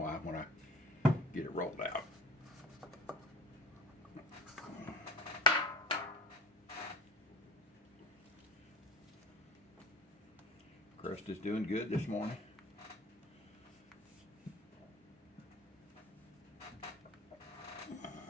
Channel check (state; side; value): normal; both; correlation 0.41